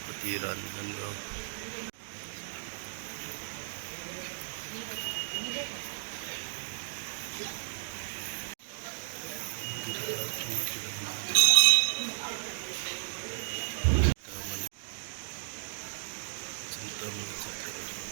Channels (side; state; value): left; silent; digital silence